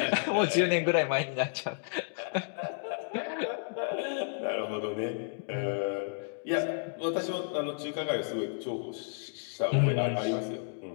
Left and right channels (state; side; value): silent; right; digital silence